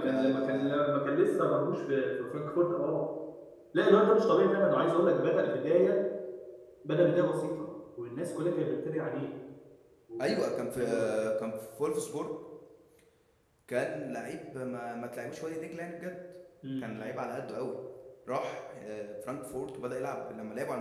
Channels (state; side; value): identical; both; correlation 1.00